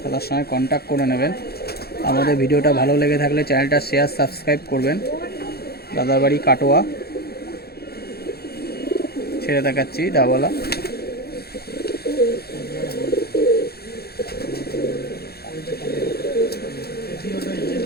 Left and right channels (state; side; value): late; right; 0.46 ms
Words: দাদার সঙ্গে কন্ট্যাক্ট করে নেবেন। আমাদের ভিডিওটা ভালো লেগে থাকলে চ্যানেলটা শেয়ার সাবস্ক্রাইব করবেন। দাদার বাড়ি কাটোয়া। ছেড়ে দেখাচ্ছি ডাবওয়ালা।